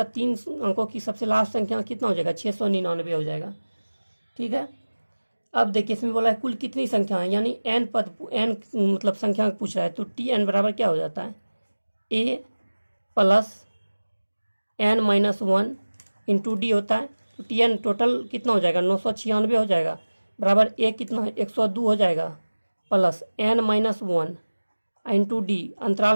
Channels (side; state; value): both; inverted; correlation -1.00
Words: 3 अंकों की सबसे लास्ट संख्या कितना हो जाएगा, 699 हो जाएगा, ठीक है। अब देखिए इसमें बोला है कुल कितनी संख्या है, यानी n पद, n मतलब संख्या पूछ रहा है। तो Tn बराबर क्या हो जाता है, a plus n minus 1 into D होता है। तो Tn टोटल कितना हो जाएगा, 996 हो जाएगा, बराबर a कितना है, 102 हो जाएगा, plus n minus 1 into D,